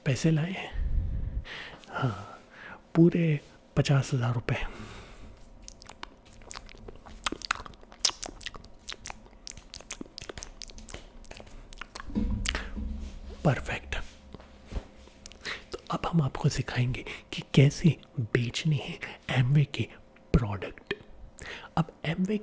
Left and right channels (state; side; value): identical; both; correlation 1.00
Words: पैसे लाए हैं? हाँ, पूरे 50,000 रुपये। परफेक्ट। तो अब हम आपको सिखाएंगे कि कैसे बेचने हैं एमवे के प्रोडक्ट। अब एमवे